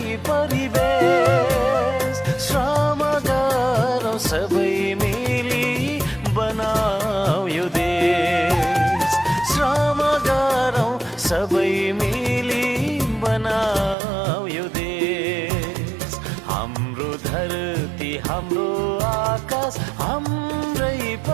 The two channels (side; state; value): left; drops out; at 14.0 s